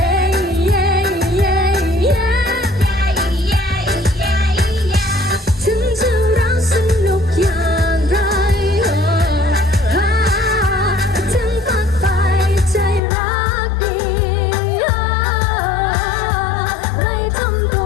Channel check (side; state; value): right; drops out; at 13.0 s